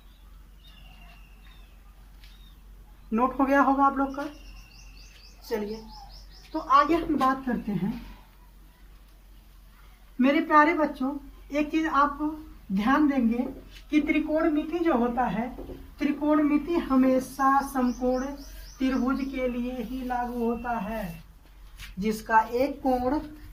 नोट हो गया होगा आप लोग का। चलिए तो आगे हम बात करते हैं। मेरे प्यारे बच्चों, एक चीज आप ध्यान देंगे कि त्रिकोणमिति जो होता है, त्रिकोणमिति हमेशा समकोण त्रिभुज के लिए ही लागू होता है। जिसका एक कोण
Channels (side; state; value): both; identical; correlation 1.00